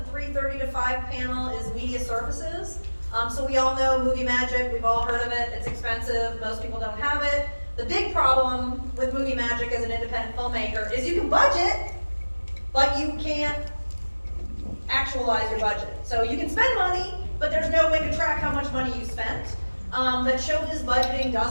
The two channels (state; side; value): inverted; both; correlation -1.00